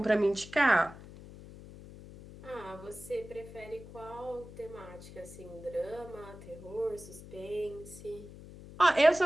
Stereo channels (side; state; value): left; noise; hum, 16 dB below the sound